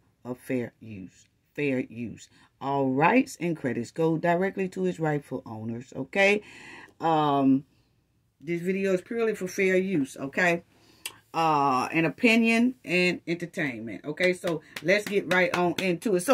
of fair use. All rights and credits go directly to its rightful owners, okay? This video is purely for fair use, okay? And opinion and entertainment, okay? So let's get right on into it.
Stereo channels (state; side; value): identical; both; correlation 1.00